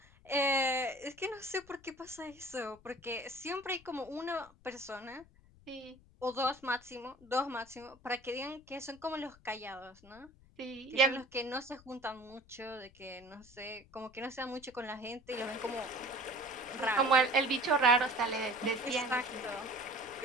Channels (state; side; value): noise; left; rumble, 25 dB below the sound